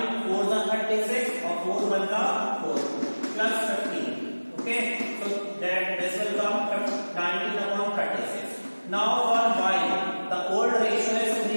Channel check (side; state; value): both; inverted; correlation -1.00